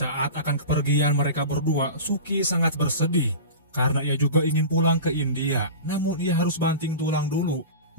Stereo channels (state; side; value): inverted; both; correlation -0.31